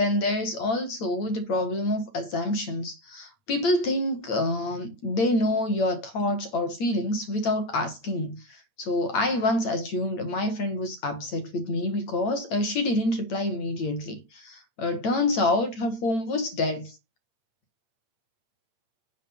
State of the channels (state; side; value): late; right; 8.8 ms